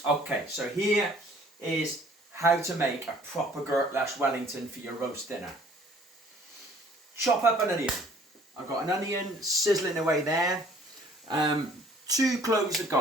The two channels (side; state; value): both; normal; correlation 0.56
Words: Okay, so here is how to make a proper Gurklash Wellington for your roast dinner. Chop up an onion. I've got an onion sizzling away there. 2 cloves of